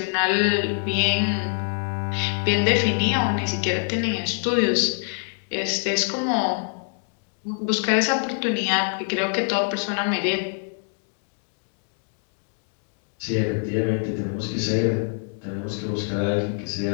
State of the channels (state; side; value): silent; right; 58 dB below the other